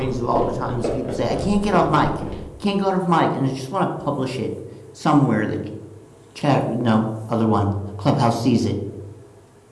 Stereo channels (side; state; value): both; identical; correlation 1.00